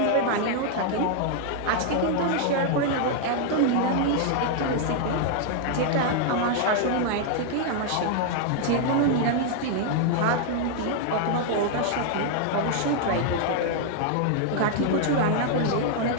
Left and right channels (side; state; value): both; different; correlation 0.00